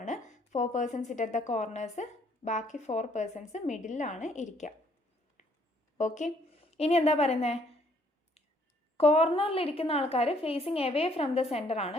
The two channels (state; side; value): normal; both; correlation 0.65